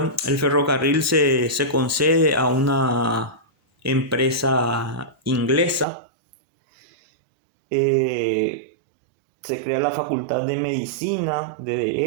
ferrocarril se concede a una empresa inglesa. Se crea la Facultad de Medicina, de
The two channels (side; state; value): left; drops out; at 5.9 s